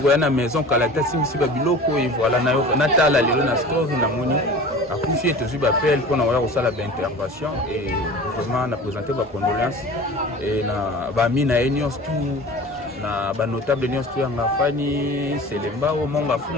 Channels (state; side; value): normal; both; correlation 0.39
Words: ya na maison kalata simisi ba biloko et voilà na yo natala lelo na story na moni akufi etozwi bapel mpona koya kosala baintervention et vraiment na présenter bacondoléance et na bami na ye nyonso tout na banotable nyonso to yanga fani Selemba omonga